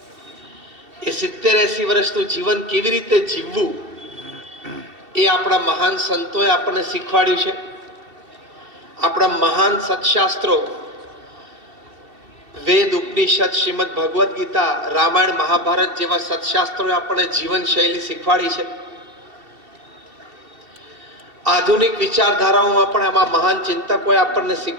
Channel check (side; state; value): left; late; 2.7 ms